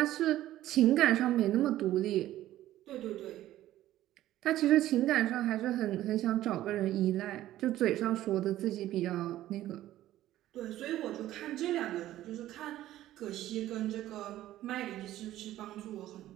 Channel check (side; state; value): left; quieter; 14.0 dB